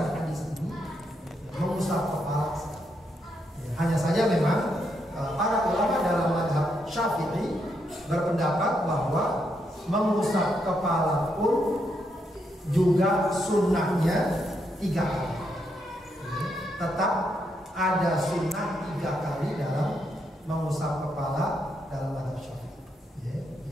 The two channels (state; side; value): normal; both; correlation 0.79